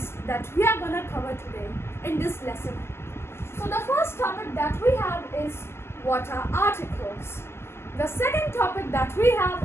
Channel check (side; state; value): right; late; 0.12 ms